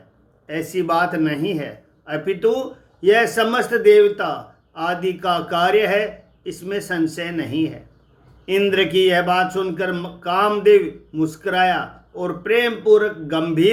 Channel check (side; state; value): both; identical; correlation 1.00